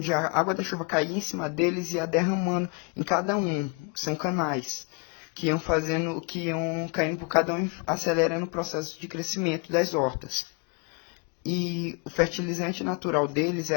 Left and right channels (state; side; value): quieter; right; 33.8 dB